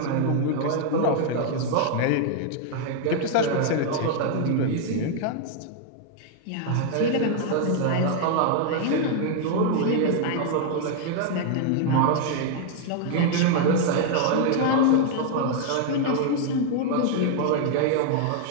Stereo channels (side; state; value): both; different; correlation 0.00